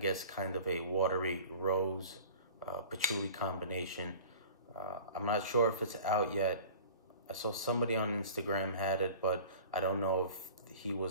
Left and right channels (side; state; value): both; inverted; correlation -0.42